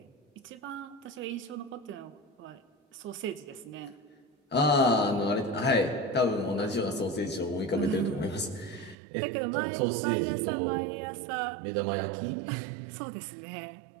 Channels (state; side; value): drops out; left; at 9.0 s